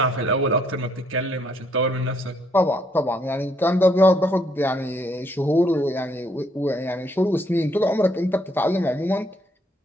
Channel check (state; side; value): normal; both; correlation 0.70